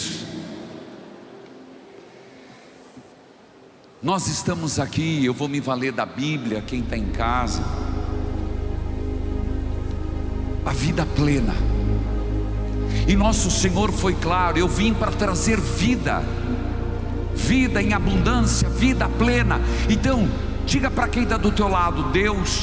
nós estamos aqui, eu vou me valer da Bíblia, quem está em casa. A vida plena. E nosso Senhor foi claro: eu vim para trazer vida, vida em abundância, vida plena. Então, diga para quem está do teu lado:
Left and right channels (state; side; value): identical; both; correlation 1.00